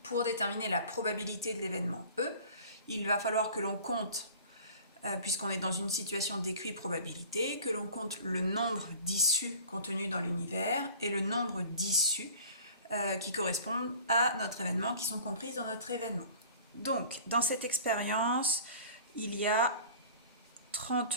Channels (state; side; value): inverted; both; correlation -0.44